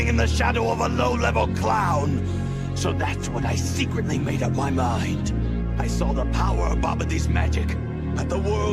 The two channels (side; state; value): both; identical; correlation 1.00